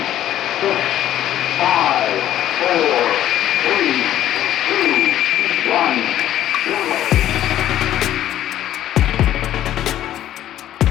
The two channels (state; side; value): quieter; right; 12.2 dB